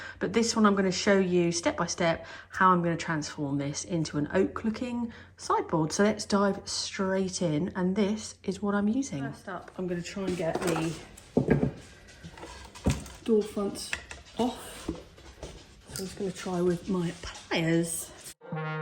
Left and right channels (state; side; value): identical; both; correlation 1.00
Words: But this one I'm going to show you step by step how I'm going to transform this into an oak looking sideboard. So let's dive straight in, and this is what I'm using. First up, I'm going to try and get the door fronts off. So I'm just going to try with my pliers.